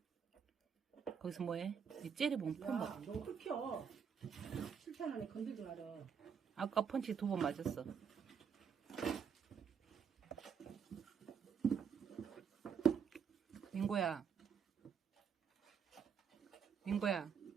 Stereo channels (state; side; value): quieter; left; 7.0 dB